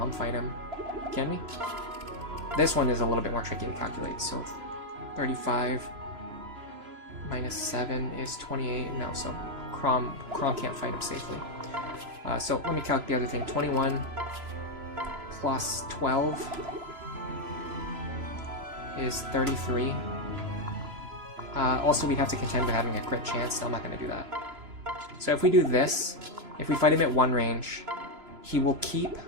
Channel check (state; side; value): late; left; 3.0 ms